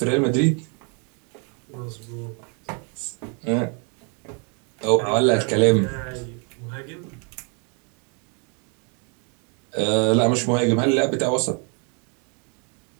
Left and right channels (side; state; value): left; quieter; 37.1 dB